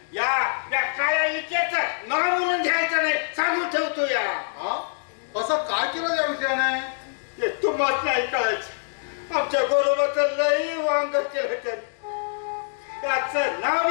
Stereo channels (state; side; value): silent; right; digital silence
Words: या काळ्या इकेचं नाव म्हणून घ्यायचं नाही सांगून ठेवतो या. हा? असं काय केलं या विषयाने? हे तुम्हाला नाही कळायचं. आमच्या गोरोबाचं लई वांग केलं त्याने. त्याचं नाव